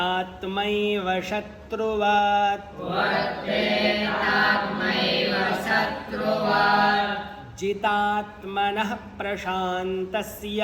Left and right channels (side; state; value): both; identical; correlation 1.00